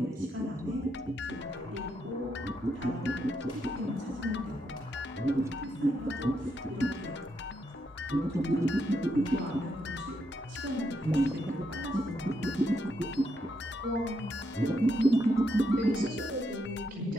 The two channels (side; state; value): both; normal; correlation 0.79